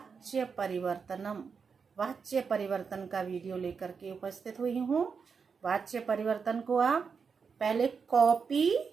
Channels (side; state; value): left; quieter; 5.7 dB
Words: परिवर्तन का वीडियो लेकर के उपस्थित हुई हूँ। वाच्य परिवर्तन को आप पहले कॉपी